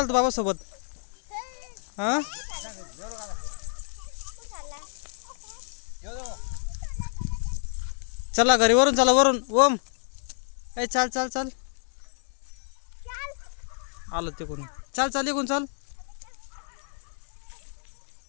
तू बाबा सोबत? हा चला घरी वरून चला वरून. ओम ए चाल चाल चाल आलो तिकून. चाल चाल इकून चाल.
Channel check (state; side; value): silent; right; digital silence